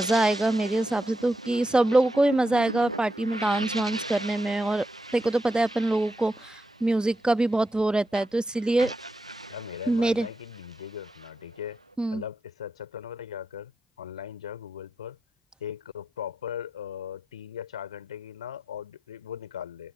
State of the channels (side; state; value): both; normal; correlation 0.86